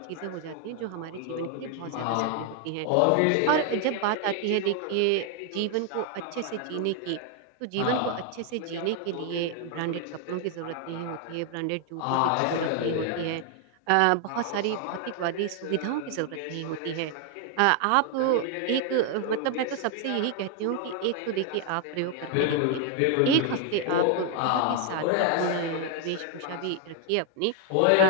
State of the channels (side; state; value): both; different; correlation 0.00